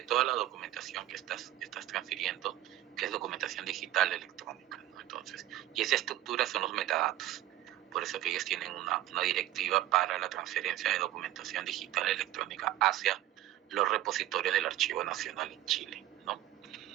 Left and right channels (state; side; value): quieter; left; 13.9 dB